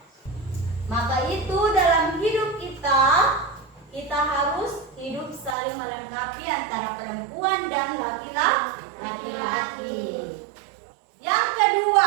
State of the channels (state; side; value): drops out; left; at 5.6 s